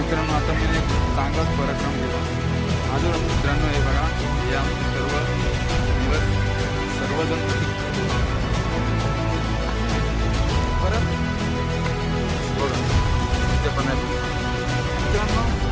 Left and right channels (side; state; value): both; identical; correlation 1.00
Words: आता मी एक चांगलाच पराक्रम केला अजून मित्रांनो. हे बघा या सर्वजण परत बघा ते पण आहे मित्रांनो.